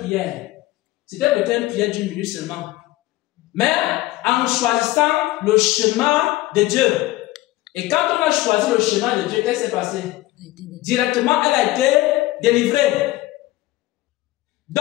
C'était peut-être une prière d'1 minute seulement. Mais en choisissant le chemin de Dieu. Et quand on a choisi le chemin de Dieu, qu'est-ce qui s'est passé? Directement, elle a été délivrée.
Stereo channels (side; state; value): right; quieter; 17.6 dB